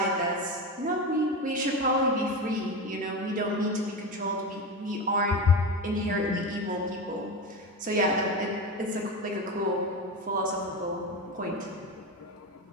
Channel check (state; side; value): normal; both; correlation 0.21